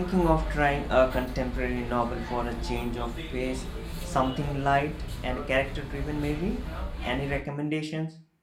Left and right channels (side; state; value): both; identical; correlation 1.00